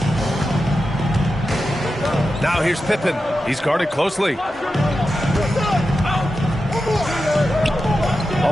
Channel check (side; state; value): both; normal; correlation 0.91